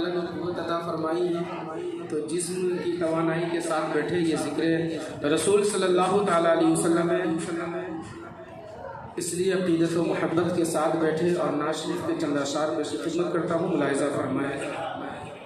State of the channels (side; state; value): both; identical; correlation 1.00